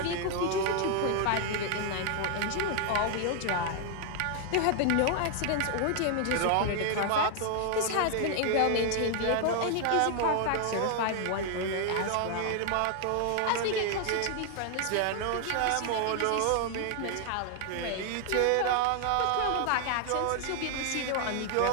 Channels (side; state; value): both; different; correlation 0.00